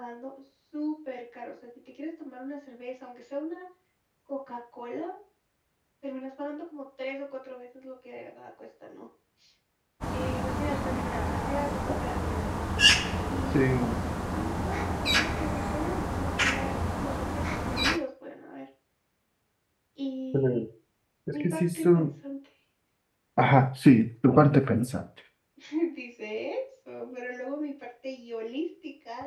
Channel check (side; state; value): both; identical; correlation 1.00